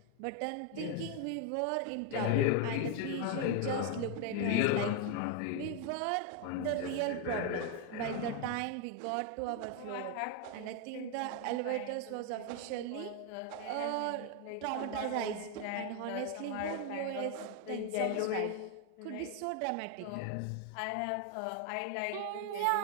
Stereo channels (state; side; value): different; both; correlation 0.01